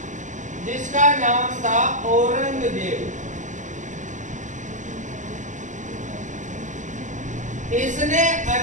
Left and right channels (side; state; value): left; late; 0.36 ms